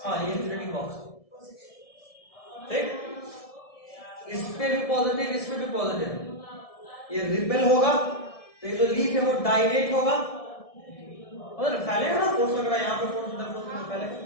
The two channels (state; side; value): late; right; 1.7 ms